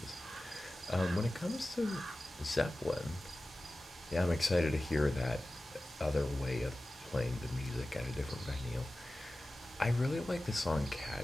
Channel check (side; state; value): both; normal; correlation 0.96